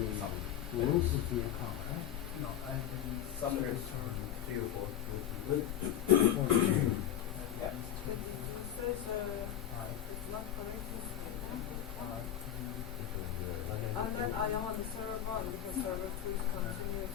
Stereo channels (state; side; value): quieter; right; 10.7 dB